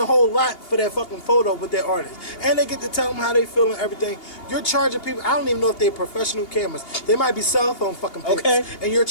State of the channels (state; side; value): late; right; 2.8 ms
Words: whole lot for that fucking photo with their artist. And they get to tell them how they feel and everything. You're charging people, I don't even know if they're professional cameras. They might be cell phone fucking pics. Okay. And you're